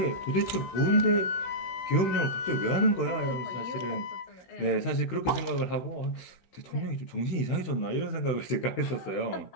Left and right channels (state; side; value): late; right; 16 ms